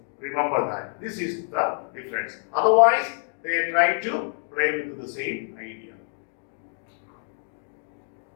Remember that. This is the difference. Otherwise, they try to play with the same idea.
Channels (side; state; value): right; silent; digital silence